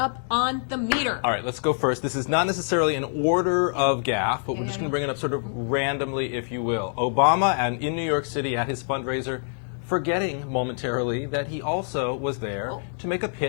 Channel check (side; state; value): right; silent; 61 dB below the other